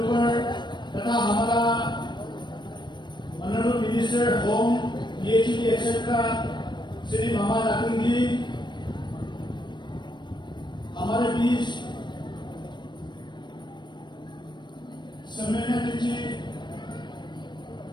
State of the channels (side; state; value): right; late; 0.22 ms